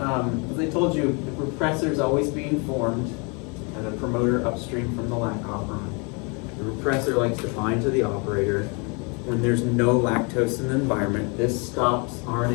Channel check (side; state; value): right; quieter; 32.8 dB